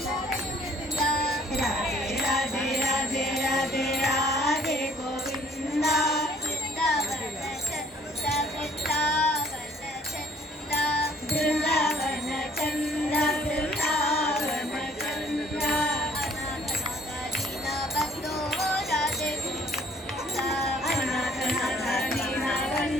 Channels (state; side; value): normal; both; correlation 0.60